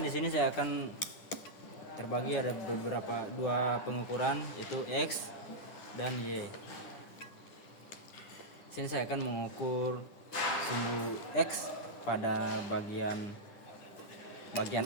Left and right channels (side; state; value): right; late; 9.9 ms